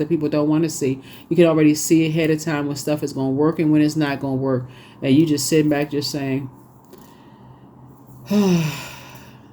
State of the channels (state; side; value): identical; both; correlation 1.00